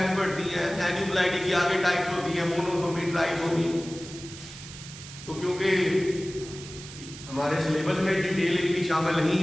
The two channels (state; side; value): noise; right; hiss, 14 dB below the sound